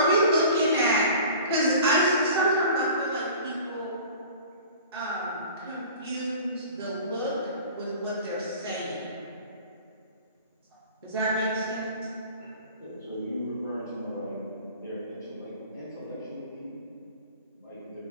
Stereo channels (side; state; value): both; inverted; correlation -0.42